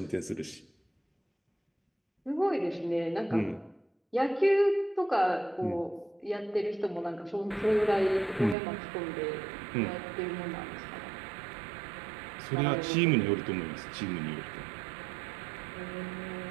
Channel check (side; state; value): left; drops out; at 8.6 s